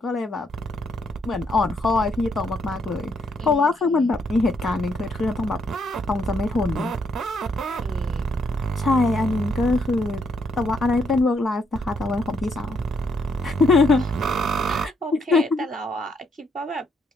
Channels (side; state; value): both; normal; correlation 0.73